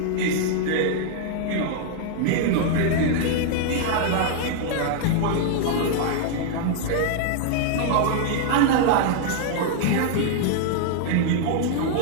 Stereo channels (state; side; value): different; both; correlation 0.00